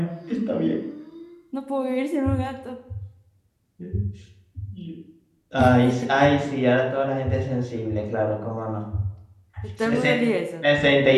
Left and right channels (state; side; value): identical; both; correlation 1.00